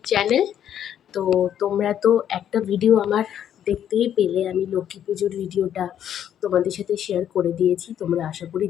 channel. তো তোমরা তো একটা ভিডিও আমার দেখতেই পেলে, আমি লক্ষ্মী পুজোর ভিডিওটা তোমাদের সাথে শেয়ার করে দিয়েছি, তোমরা আশা করি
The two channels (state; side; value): quieter; right; 10.0 dB